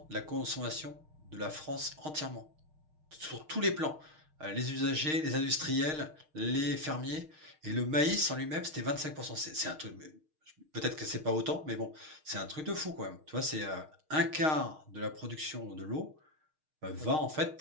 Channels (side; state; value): left; late; 6.4 ms